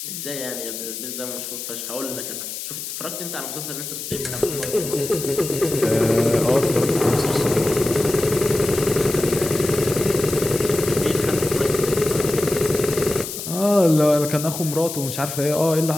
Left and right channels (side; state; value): left; noise; hiss, 7 dB below the sound